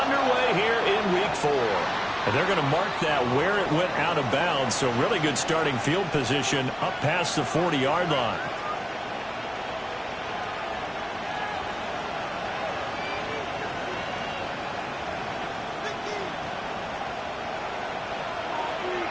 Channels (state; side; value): identical; both; correlation 1.00